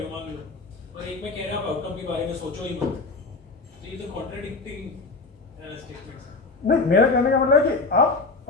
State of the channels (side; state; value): right; quieter; 3.8 dB